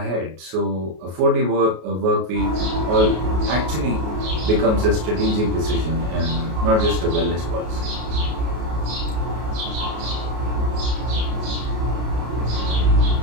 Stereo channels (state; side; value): late; left; 33 ms